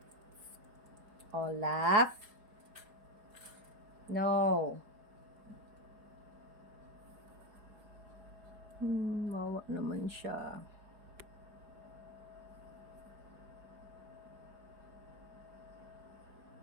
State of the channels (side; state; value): left; late; 4.8 ms